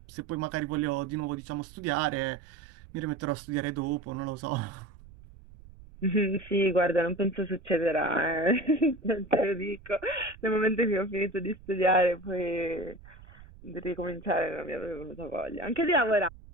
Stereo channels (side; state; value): right; noise; rumble, 20 dB below the sound